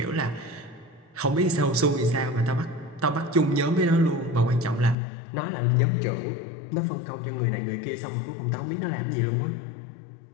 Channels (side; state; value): right; drops out; at 5.0 s